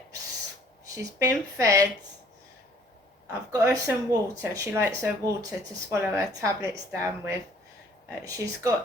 she's been fed, I've got her some water, she likes her water to swallow her tablets down with, she's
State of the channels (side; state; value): both; normal; correlation 0.58